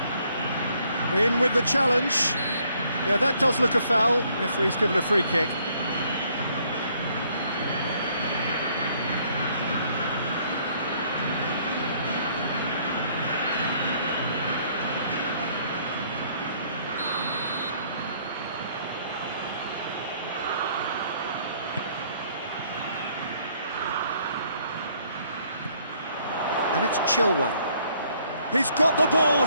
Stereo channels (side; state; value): both; inverted; correlation -0.65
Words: In with the challenge. Yeah, that does look a foul. Referee's given a free kick. It's Chilwell. He's got the ball,